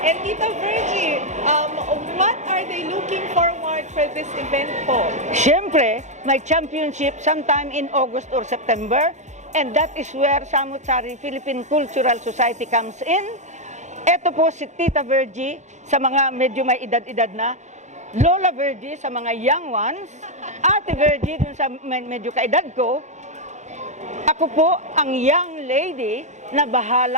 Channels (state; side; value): late; left; 0.34 ms